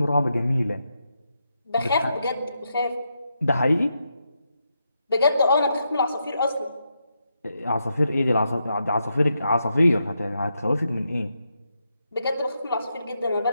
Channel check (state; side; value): inverted; both; correlation -0.84